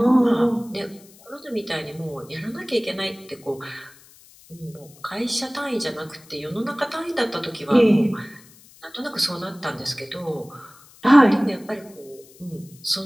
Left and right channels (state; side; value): noise; left; hiss, 24 dB below the sound